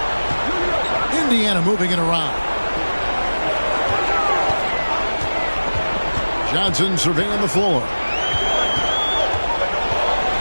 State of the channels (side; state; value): both; inverted; correlation -1.00